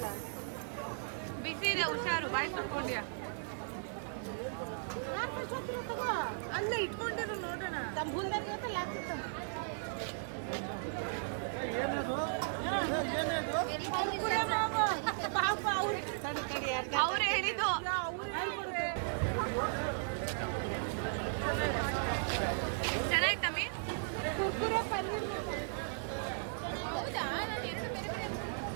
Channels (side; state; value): left; silent; digital silence